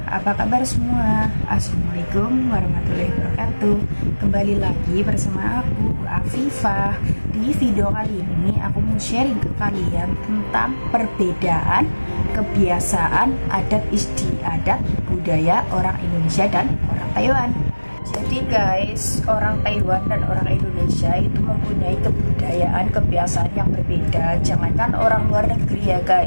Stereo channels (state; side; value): inverted; both; correlation -1.00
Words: apa kabar semua? Assalamualaikum warahmatullahi wabarakatuh. Kembali lagi bersama aku, Afifah. Di video kali ini aku mau sharing ke kalian tentang perbedaan kebiasaan, adat istiadat, budaya orang Indonesia dan orang Taiwan. Jadi guys, orang Taiwan dan orang Indonesia itu mempunyai kebudayaan, kebiasaan yang berbeda. Jangankan orang luar negeri ya